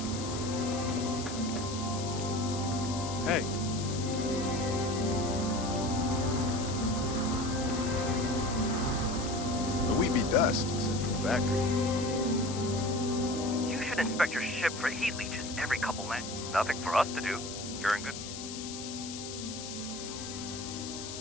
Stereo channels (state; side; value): noise; left; hiss, 9 dB below the sound